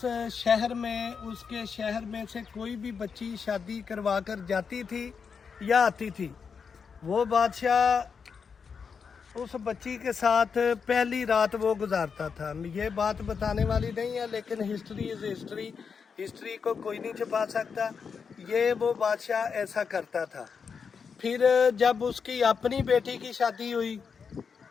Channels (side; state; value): right; quieter; 6.0 dB